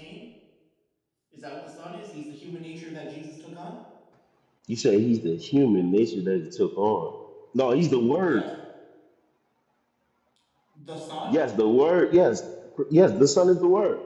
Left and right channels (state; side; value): identical; both; correlation 1.00